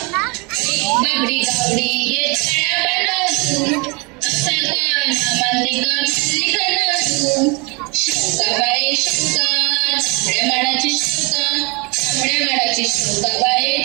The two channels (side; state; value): left; quieter; 29.0 dB